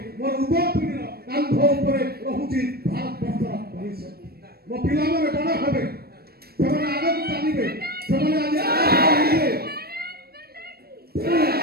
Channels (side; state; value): left; late; 0.45 ms